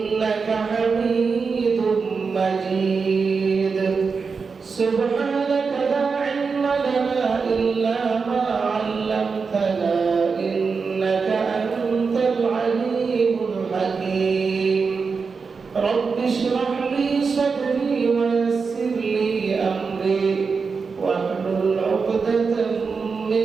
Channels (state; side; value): quieter; left; 5.1 dB